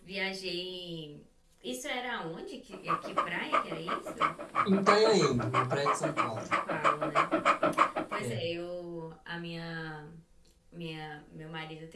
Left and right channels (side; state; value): both; identical; correlation 1.00